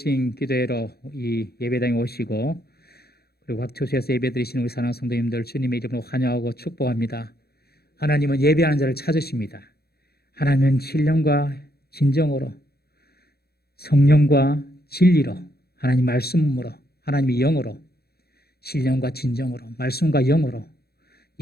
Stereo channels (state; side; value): late; right; 0.46 ms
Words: 기도회로 이 예배당에 오시고 그리고 각 처소에서 예배 드리시는 우리 사랑하는 성도님들 주님의 이름으로 환영하고 축복합니다. 하나님은 예배하는 자를 찾으십니다. 하나님은 신령과 진정으로 성령과 진리로 하나님 말씀으로 하나님의 영으로 신령과 진정으로 말씀과 영으로